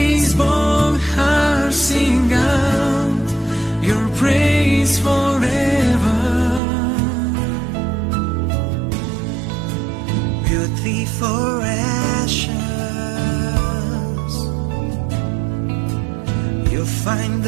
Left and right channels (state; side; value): drops out; left; at 6.6 s